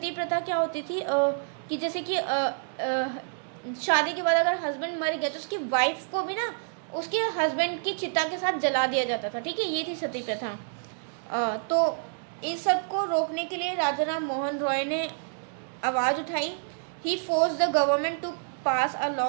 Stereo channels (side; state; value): left; silent; digital silence